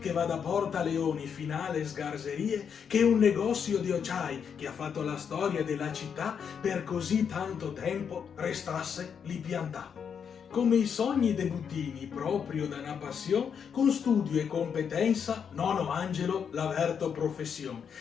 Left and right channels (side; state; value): right; quieter; 7.2 dB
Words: che va da Porta Leoni fino alle sgarzerie, che un negozio di occiai che ha fatto la storia della città per così tanto tempo restasse lì piantato. Come i sogni dei buttini, proprio da una passione, con studio e competenza, nono Angelo l'averto professione,